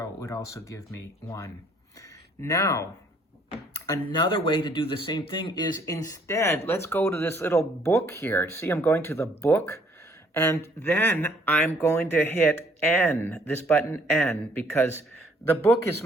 it would also give me 1. Now, another way to do the same thing is instead, let's go to this little book here. See, I'm going to the book, and then I'm going to hit N, this button N, because the book is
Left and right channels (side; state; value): both; normal; correlation 0.63